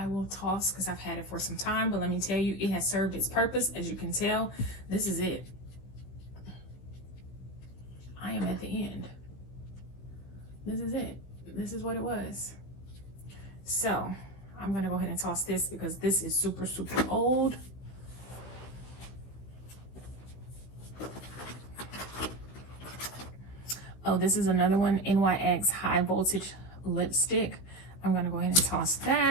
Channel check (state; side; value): late; right; 16 ms